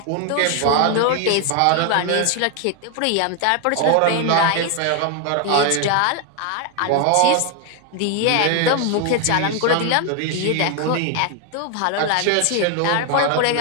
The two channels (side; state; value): both; different; correlation 0.00